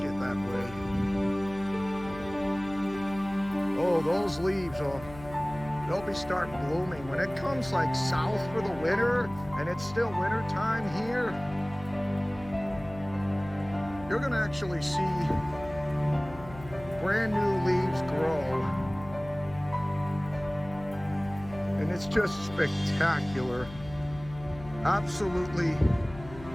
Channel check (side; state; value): left; noise; hum, 16 dB below the sound